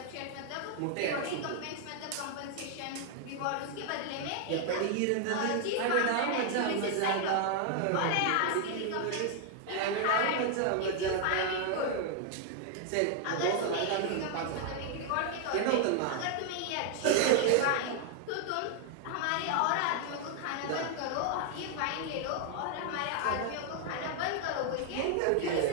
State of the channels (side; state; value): both; different; correlation 0.00